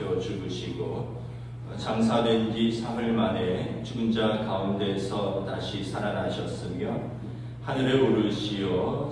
죽으시고 장사된 지 사흘 만에 죽은 자 가운데서 다시 살아나셨으며 하늘에 오르시어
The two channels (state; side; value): identical; both; correlation 1.00